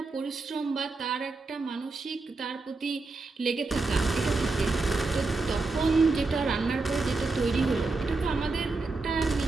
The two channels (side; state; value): left; quieter; 3.6 dB